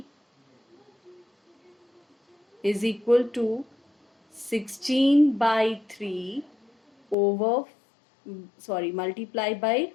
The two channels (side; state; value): right; drops out; at 7.2 s